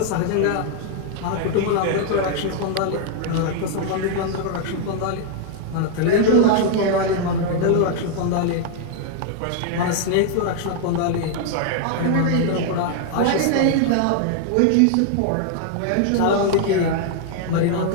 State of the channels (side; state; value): both; different; correlation 0.00